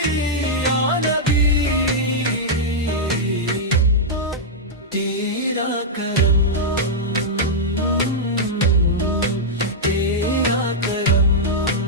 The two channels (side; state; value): both; normal; correlation -0.06